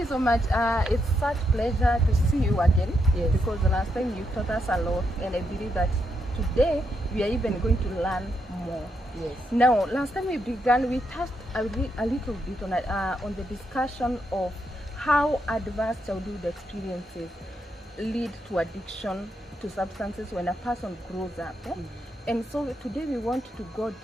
so much. It's such pleasure to see you again. Yes. Because the last time you taught us a lot, and I believe that today we are even going to learn more. Yes. Now, last time we began, we touched a little bit on the discussion of how adverse childhood experiences lead to addiction to substances when a person grows up. And so today we want to go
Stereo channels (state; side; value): normal; both; correlation 0.81